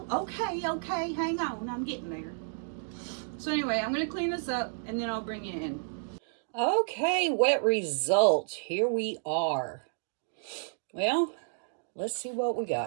Okay, hang on, I'm getting there. So anyway, I'm gonna clean this up and then I'll bring you in. Okay, wet results. Here we are. Well, let's see what we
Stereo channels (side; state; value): left; silent; digital silence